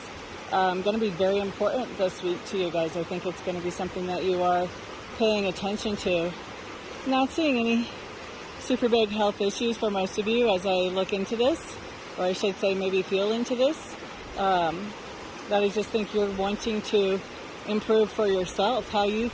going to be very important this week to you guys. I think it's going to be something that you are paying attention to. Not seeing any super big health issues for most of you as I look into this, or I should say maybe feel into this. That I just think you're wanting to improve for yourself, how you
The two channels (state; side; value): identical; both; correlation 1.00